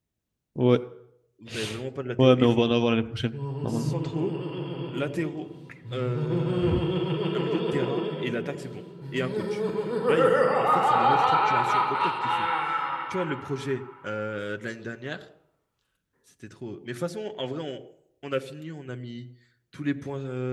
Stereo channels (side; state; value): both; identical; correlation 1.00